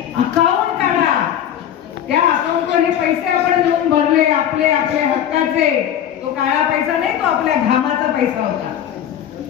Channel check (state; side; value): quieter; right; 10.1 dB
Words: अकाउंट काढा, त्या अकाउंटवर हे पैसे आपण देऊन भरले, आपले आपले हक्काचे. तो काळा पैसा नाही, तो आपल्या घामाचा पैसा होता.